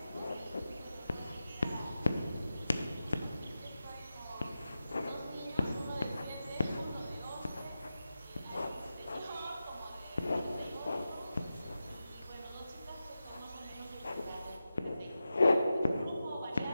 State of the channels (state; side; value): inverted; both; correlation -0.92